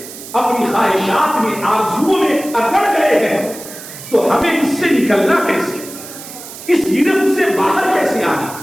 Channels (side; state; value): right; noise; hiss, 14 dB below the sound